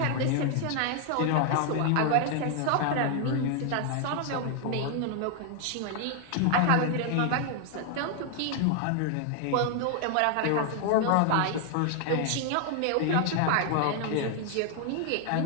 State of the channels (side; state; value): both; different; correlation 0.00